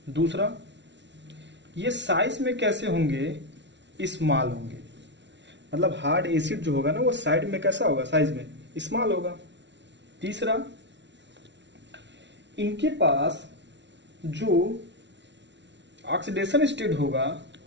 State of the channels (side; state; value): left; late; 0.51 ms